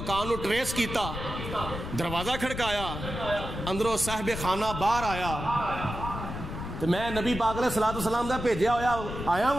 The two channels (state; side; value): noise; left; rumble, 7 dB below the sound